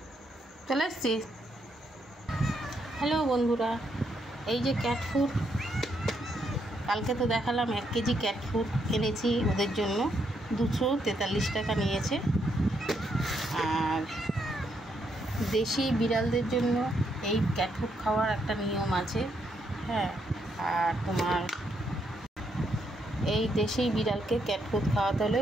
চলে এসছিস। হ্যালো বন্ধুরা, এই যে ক্যাট ফুড, কালকে তো দেখালাম 1 কেজি ক্যাট ফুড এনেছি ওদের জন্য। 243 টাকা নিয়েছে। আর দেশি বিড়ালদের জন্য এই ক্যাট ফুড খাওয়ার একটা নিয়ম আছে। হ্যাঁ, আর তোমার এই দেশি বিড়ালকে ক্যাট ফুড খাওয়াতে হলে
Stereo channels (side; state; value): both; normal; correlation 0.77